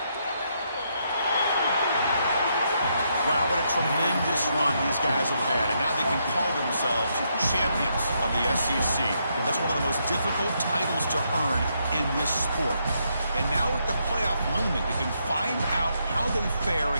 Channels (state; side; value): inverted; both; correlation -0.77